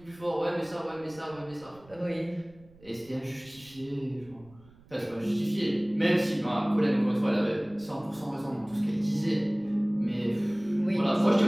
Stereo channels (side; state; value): right; noise; rumble, 25 dB below the sound